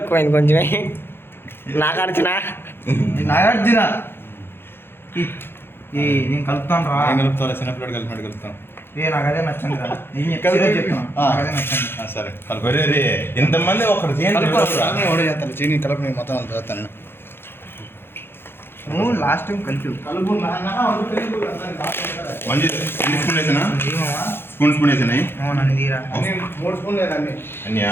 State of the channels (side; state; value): right; late; 0.11 ms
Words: కొంచెమే. నాగార్జున నేను కలుపుతాను రా. కలుపుతా చిన్నపిల్లడు కలిపినట్టు కలుపుతాను. నాకు అదే నచ్చండి రా. అదే నచ్చండి. సరే కలుపు. ఇంతమంది ఒకటి చేస్తాను చీని కలుపు. నేను మొత్తం చదువుతాను. నువ్వు లాస్ట్ టైం కలిపి మంచి స్పూన్ వేసినా స్పూన్ వేసినాయి. అవునండి తీరా 3 స్పూన్లు